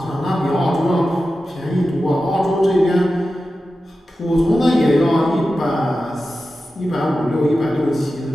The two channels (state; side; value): normal; both; correlation 0.93